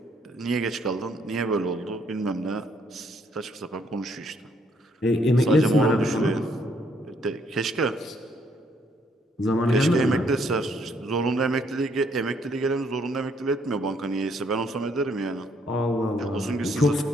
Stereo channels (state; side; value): normal; both; correlation 0.69